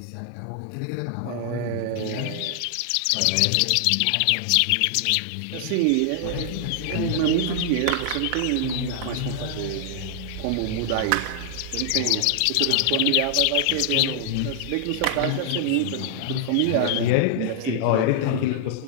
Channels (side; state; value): both; different; correlation -0.01